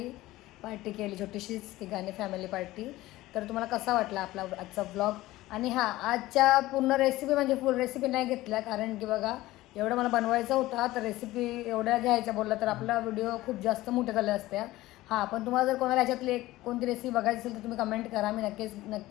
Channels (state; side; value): quieter; right; 17.3 dB